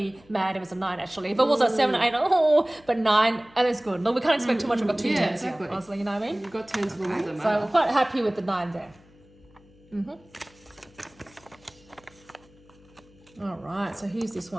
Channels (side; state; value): left; noise; hum, 27 dB below the sound